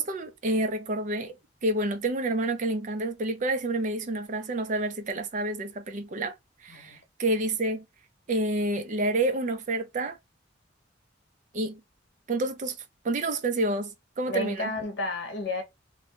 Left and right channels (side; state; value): both; normal; correlation 0.03